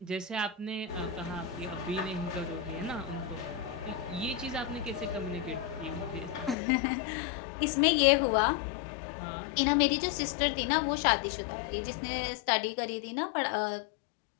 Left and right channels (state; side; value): drops out; right; at 6.6 s